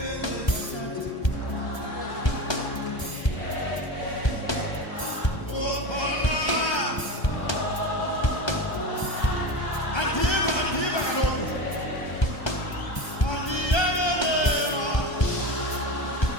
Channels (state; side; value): late; right; 1.3 ms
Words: sathi. Andiva kaloku. Andiyekelelwa.